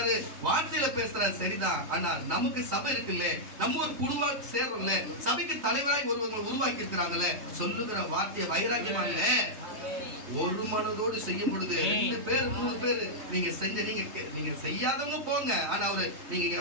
வார்த்தையில பேசுறாரு சரிதான், ஆனா நமக்கு சபை இருக்குல்ல, நம்ம ஒரு குழுவா சேர்றோம்ல, சபைக்கு தலைவராய் ஒருவங்க உருவாக்கி இருக்கிறாங்களே, சொல்லுகிற வார்த்தையை வைராக்கியமா இல்ல, ஒரு மனதோடு செய்யும் பொழுது 2 பேர் 3 பேர் நீங்க செஞ்ச, நீங்க செய்யாதவங்க போங்க, ஆனா நீங்க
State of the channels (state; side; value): late; left; 3.3 ms